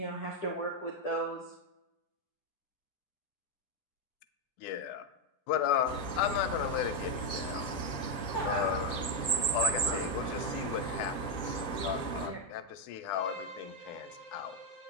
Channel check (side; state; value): right; late; 10 ms